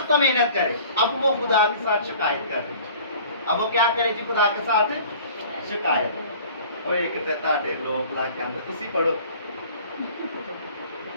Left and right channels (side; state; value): both; inverted; correlation -0.47